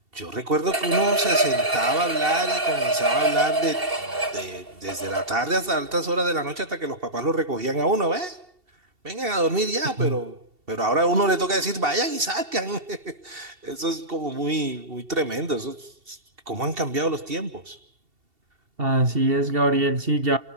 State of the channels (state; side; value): late; left; 2.7 ms